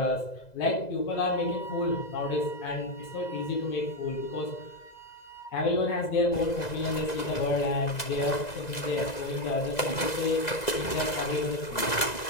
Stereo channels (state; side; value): late; right; 2.0 ms